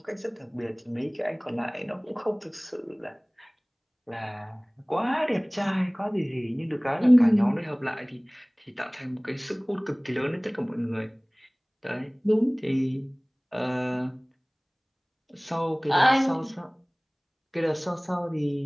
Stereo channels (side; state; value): both; identical; correlation 1.00